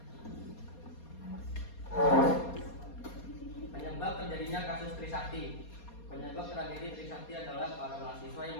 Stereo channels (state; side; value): late; right; 4.2 ms